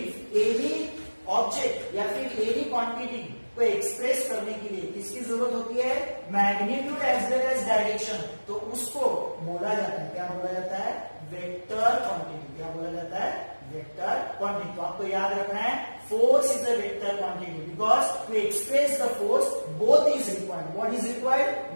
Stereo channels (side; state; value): both; inverted; correlation -1.00